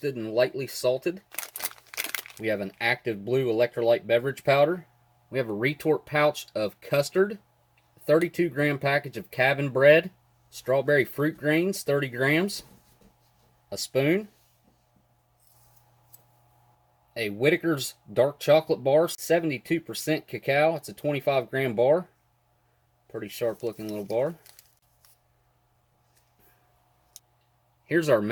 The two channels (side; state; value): both; identical; correlation 1.00